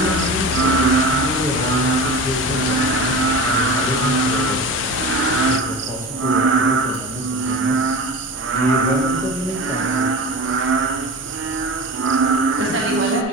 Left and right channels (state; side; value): normal; both; correlation 0.31